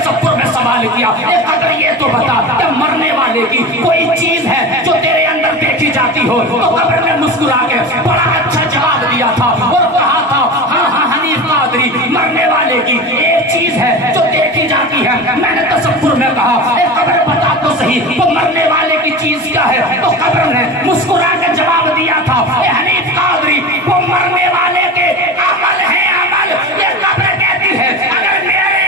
میں سوال کیا، اے قبر یہ تو بتا کہ مرنے والے کی کوئی چیز ہے جو تیرے اندر دیکھی جاتی ہو؟ تو قبر نے مسکرا کے بڑا اچھا جواب دیا تھا اور کہا تھا ہاں ہاں حنیف قادری، مرنے والے کی ایک چیز ہے جو دیکھی جاتی ہے۔ میں نے تصور میں کہا اے قبر بتا تو صحیح وہ مرنے والے کی چیز کیا ہے؟ تو قبر نے مسکرا کے جواب دیا تھا اے حنیف قادری، وہ مرنے والے کے عمل ہے، عمل۔ یہ قبر کہتی ہے اگر میرے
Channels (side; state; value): both; normal; correlation 0.30